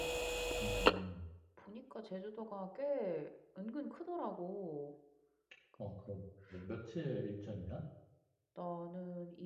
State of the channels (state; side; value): identical; both; correlation 1.00